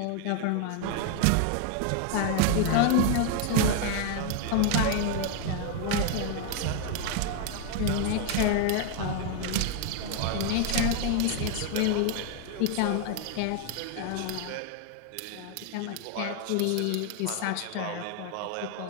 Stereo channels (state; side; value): different; both; correlation 0.01